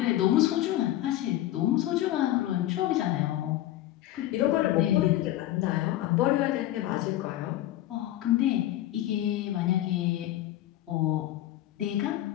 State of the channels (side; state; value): right; quieter; 14.2 dB